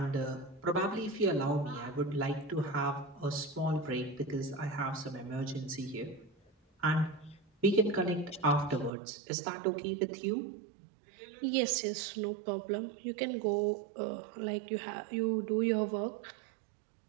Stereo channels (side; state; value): left; drops out; at 8.9 s